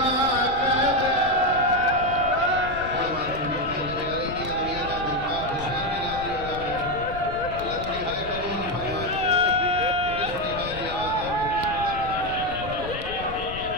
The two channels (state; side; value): noise; left; rumble, 11 dB below the sound